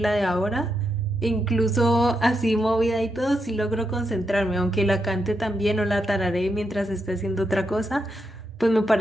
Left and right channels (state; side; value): normal; both; correlation 0.83